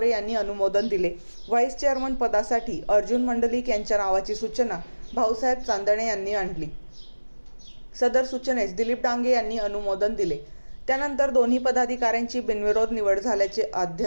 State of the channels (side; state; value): both; inverted; correlation -1.00